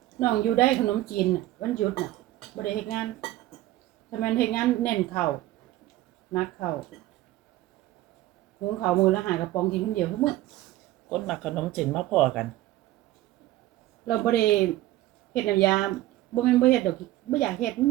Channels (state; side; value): quieter; left; 15.8 dB